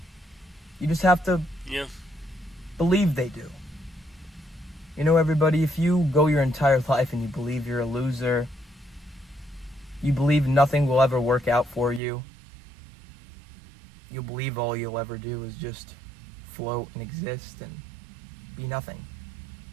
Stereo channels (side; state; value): left; drops out; at 12.0 s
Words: You just have to believe they do. Everybody, if you go your entire life and you believe you're a loser, you believe nothing will ever work out for you, you'll believe all you'll ever do is just float and exist and be nothing.